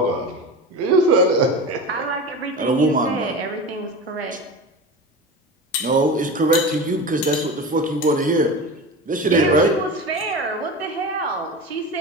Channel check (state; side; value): normal; both; correlation 0.29